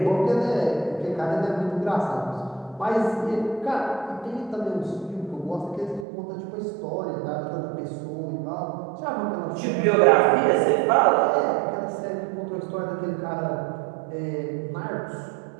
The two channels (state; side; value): drops out; left; at 6.1 s